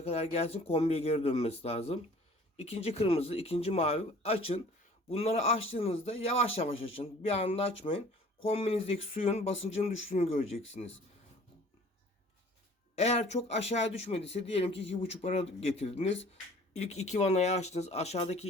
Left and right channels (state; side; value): normal; both; correlation 0.50